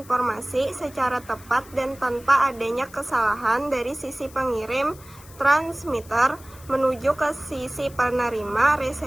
secara tepat dan tanpa adanya kesalahan dari sisi pengirim, transmitter, menuju ke sisi penerima,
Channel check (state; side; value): noise; left; hiss, 22 dB below the sound